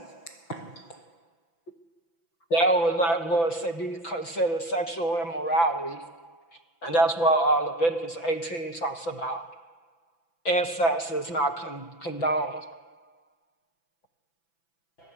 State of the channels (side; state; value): right; late; 6.0 ms